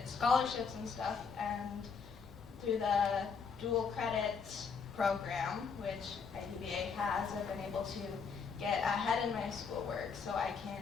scholarships and stuff. And through the dual credit program, which IDVA has, I've been able to get ahead in my schoolwork so I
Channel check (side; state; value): right; quieter; 5.7 dB